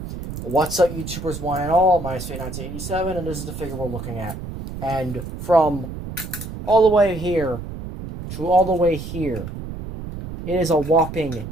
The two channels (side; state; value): right; noise; rumble, 9 dB below the sound